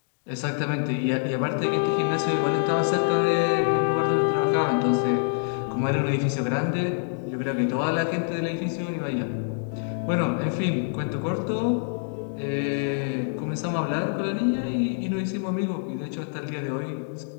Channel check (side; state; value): right; silent; digital silence